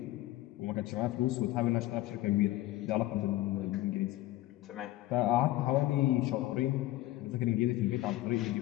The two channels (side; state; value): right; quieter; 16.4 dB